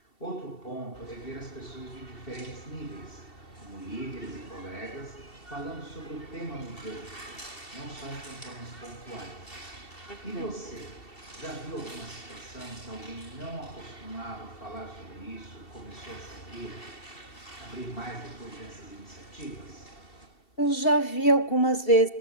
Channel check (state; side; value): late; right; 2.7 ms